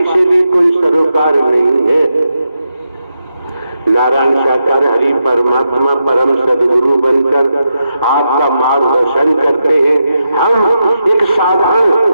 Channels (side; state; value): both; inverted; correlation -0.85